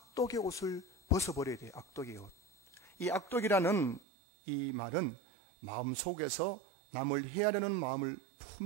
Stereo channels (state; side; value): drops out; left; at 4.0 s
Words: 옷을 벗어버려야 돼요. 악독의 옷. 이 악독이라는 이 말은 마음속에서 남을 해하려는 마음을